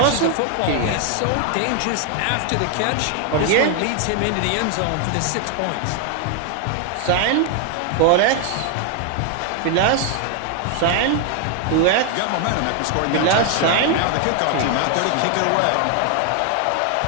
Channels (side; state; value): both; different; correlation 0.01